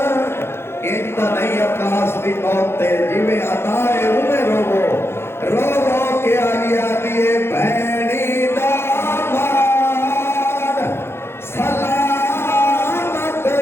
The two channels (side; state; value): right; late; 0.12 ms